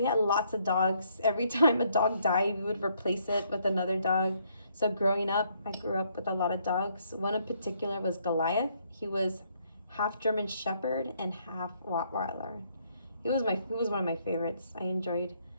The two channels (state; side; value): inverted; both; correlation -0.70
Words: had lots of dogs. Every time a dog died, we would replace it with another dog. So growing up, I grew up with a lot of dogs. One in particular was Goliath. He was half German Shepherd and half Rottweiler. He was one of my favorites. I enjoyed